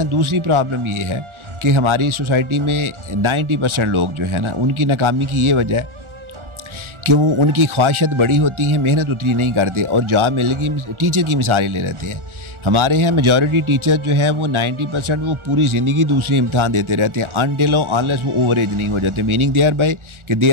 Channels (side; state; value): left; late; 1.4 ms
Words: दूसरी प्रॉब्लम ये है कि हमारी सोसाइटी में 90% लोग जो है ना, उनकी नाकामी की ये वजह है कि वो उनकी ख्वाहिशत बड़ी होती है, मेहनत उतनी नहीं करते और जॉब मिलेगी टीचर की मिसाल ले लेते हैं। हमारे यहाँ मेजॉरिटी टीचर जो है वो 90% वो पूरी ज़िंदगी दूसरे इम्तहान देते रहते हैं अनटिल अनलेस वो ओवर एज नहीं हो जाते। मीनिंग देयर बाय कि they